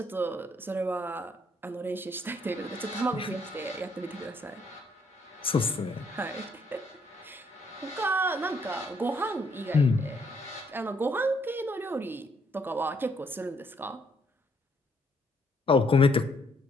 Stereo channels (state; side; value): normal; both; correlation 0.70